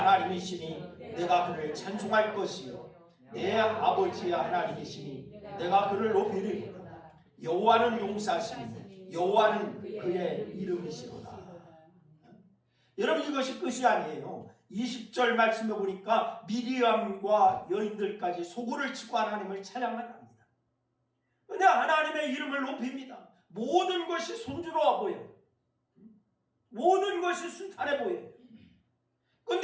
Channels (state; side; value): identical; both; correlation 1.00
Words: 내가 그를 찬송할 것이요 내 아버지의 하나님이시니 내가 그를 높이리로다. 여호와는 용사시니 여호와는 그의 이름이시로다. 여러분, 이것이 끝이 아니에요. 20절 말씀에 보니까 미리암과 여인들까지 소고를 치고 하나님을 찬양을 합니다. 그런데 하나님의 이름을 높입니다. 모든 것이 순조로워 보여요. 모든 것이 순탄해 보여요.